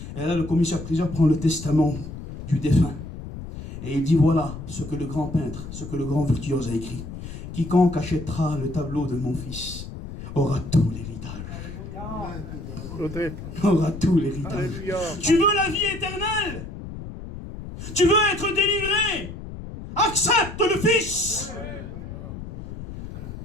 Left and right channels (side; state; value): left; noise; rumble, 10 dB below the sound